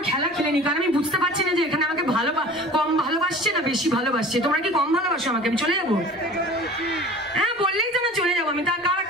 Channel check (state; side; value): normal; both; correlation 0.42